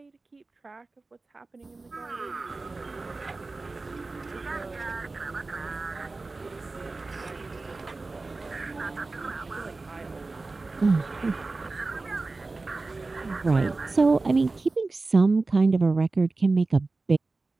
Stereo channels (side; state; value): left; quieter; 3.5 dB